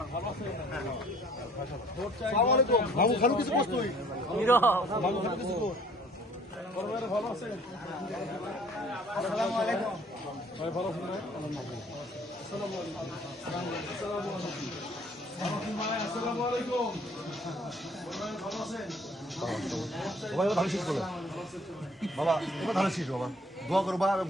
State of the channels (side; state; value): both; normal; correlation 0.56